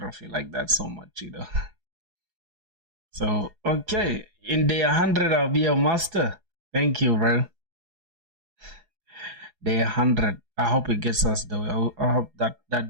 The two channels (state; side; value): late; left; 4.8 ms